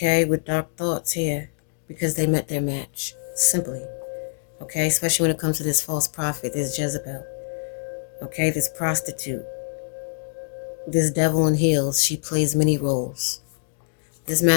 with dark thoughts here, because they met their match, simply, okay, especially when it comes to this false prophet, this Jezebel, okay, this prostitute, this devil in heels. She plays many roles. This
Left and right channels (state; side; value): silent; right; digital silence